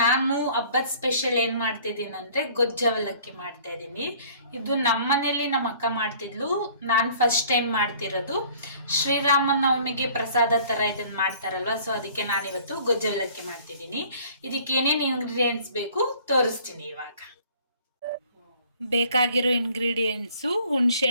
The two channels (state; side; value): inverted; both; correlation -0.53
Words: ಹಬ್ಬದ ಸ್ಪೆಷಲ್ ಏನು ಮಾಡ್ತಿದ್ದೀನಿ ಅಂದರೆ ಗೊಜ್ಜು ಅವಲಕ್ಕಿ ಮಾಡ್ತಾ ಇದ್ದೀನಿ. ಇದು ನಮ್ಮ ಮನೇಲಿ ನಮ್ಮ ಅಕ್ಕ ಮಾಡ್ತಿದ್ಲು, ನಾನು ಫಸ್ಟ್ ಟೈಮ್ ಮಾಡ್ತಿರೋದು. ಶ್ರೀರಾಮ ನವಮಿಗೆ ಪ್ರಸಾದ ಥರ ಇದನ್ನು ಮಾಡ್ತಾರಲ್ವ, ಸೊ ಅದಕ್ಕೆ ನಾನಿವತ್ತು ಗೊಜ್ಜು ಅವಲಕ್ಕಿ ಮಾಡ್ತಿದ್ದೀನಿ. ಇದಕ್ಕೆ ಏನೇನು ಇಂಗ್ರೀಡಿಯೆಂಟ್ಸ್ ಬೇಕು ತೋರಿಸ್ತೀನಿ ಇವಾಗ. ಬೇಕಾಗಿರೋ ಇಂಗ್ರೀಡಿಯೆಂಟ್ಸು